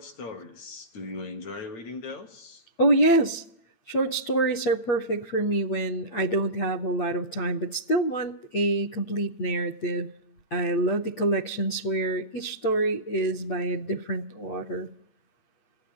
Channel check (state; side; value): late; right; 8.8 ms